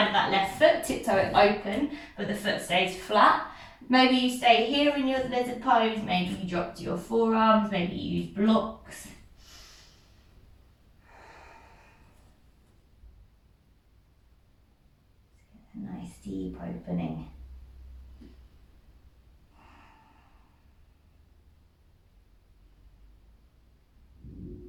of that left foot, tiptoe it open, but the foot stays flat. Maybe you stay here in your lizard pose, maybe you drop to your forearms, maybe you use blocks. A nice deep opening.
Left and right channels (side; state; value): both; identical; correlation 1.00